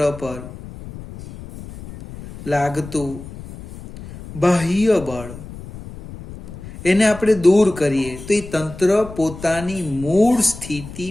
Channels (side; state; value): left; noise; rumble, 14 dB below the sound